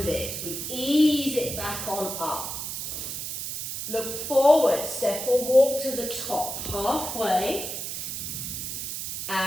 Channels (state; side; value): noise; right; hiss, 5 dB below the sound